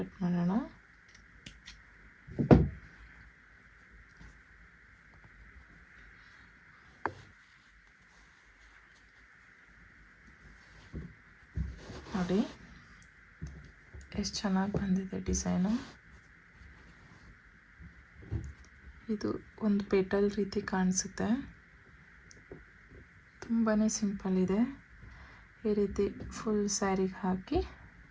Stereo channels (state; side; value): identical; both; correlation 1.00